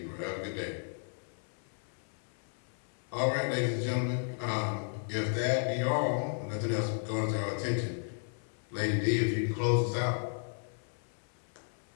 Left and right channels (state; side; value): silent; right; 55 dB below the other